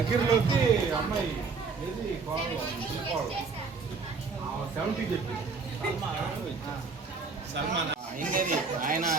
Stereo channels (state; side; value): quieter; left; 4.7 dB